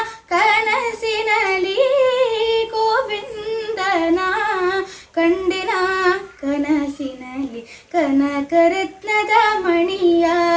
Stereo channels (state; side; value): identical; both; correlation 1.00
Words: ಕನಸಿನಲಿ ಗೋವಿಂದನ ಕಂಡೆನ ಕನಸಿನಲಿ ಕನಕರತ್ನದ ಮಣಿಯ